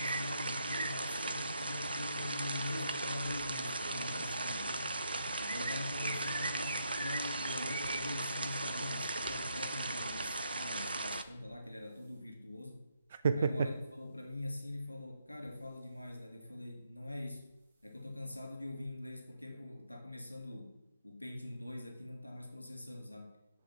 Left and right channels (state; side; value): inverted; both; correlation -0.76